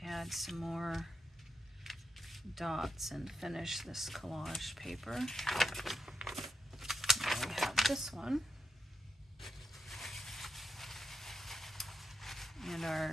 add some more dots and finish this collage paper. Now we have this one. And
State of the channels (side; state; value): both; normal; correlation 0.84